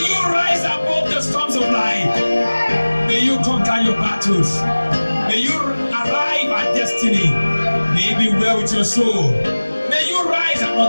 you rise above the storms of life. May you conquer your battles. May you arrive at destiny. May it be well with your soul. May you rise and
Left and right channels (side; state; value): both; inverted; correlation -1.00